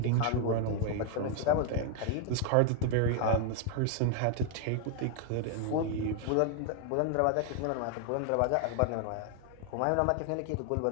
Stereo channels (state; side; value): different; both; correlation 0.01